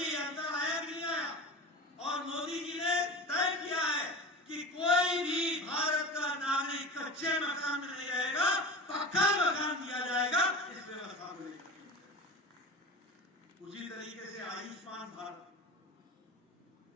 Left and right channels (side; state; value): both; normal; correlation 0.32